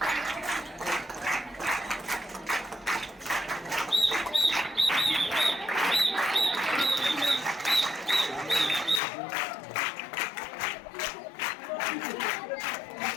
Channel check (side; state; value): right; drops out; at 9.0 s